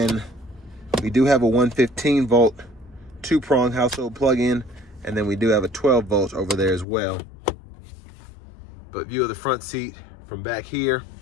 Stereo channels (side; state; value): right; drops out; at 6.9 s